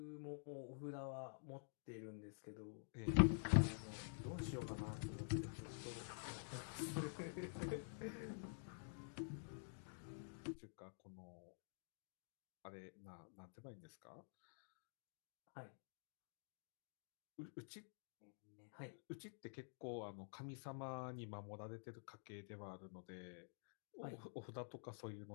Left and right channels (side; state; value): right; silent; digital silence